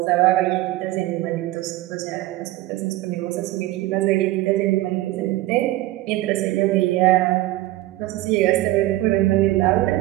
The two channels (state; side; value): quieter; left; 16.9 dB